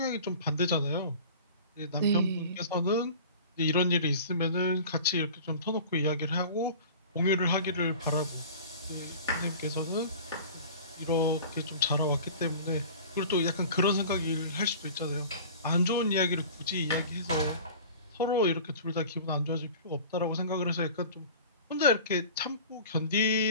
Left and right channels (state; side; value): inverted; both; correlation -0.40